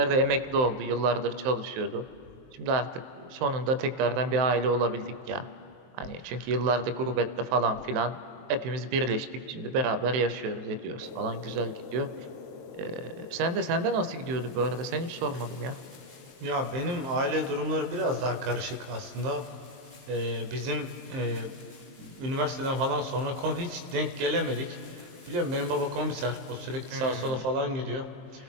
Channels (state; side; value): late; left; 23 ms